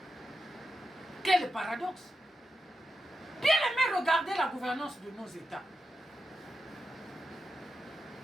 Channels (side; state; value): both; normal; correlation 0.88